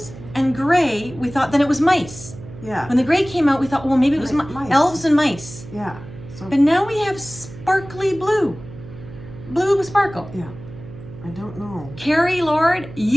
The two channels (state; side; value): noise; right; hum, 15 dB below the sound